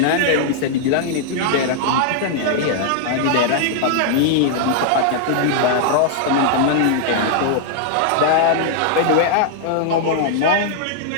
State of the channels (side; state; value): both; different; correlation -0.01